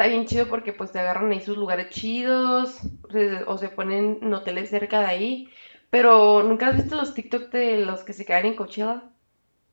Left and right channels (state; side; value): inverted; both; correlation -1.00